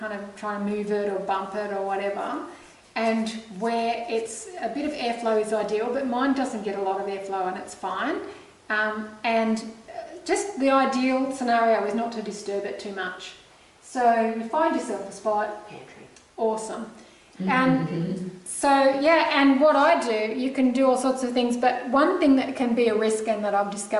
of trying to move it or bump it or whatever, and where it's a bit of airflow is ideal, but mine doesn't get a lot of airflow and it's fine. And just the ideal scenario is not to disturb it too much. So you find yourself a spot. Pantry. Awesome. And so, yeah, and what I do, you can do all sorts of things, but one thing that can be a risk and that I've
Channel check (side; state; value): both; identical; correlation 1.00